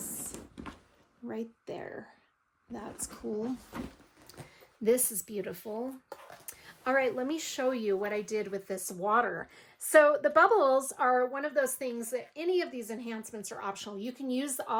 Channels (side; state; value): both; identical; correlation 1.00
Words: Right there. That's cool. This is beautiful. All right, let me show you what I did with this water. So the bubbles are one of those things that any of these enhancements are optional. You can use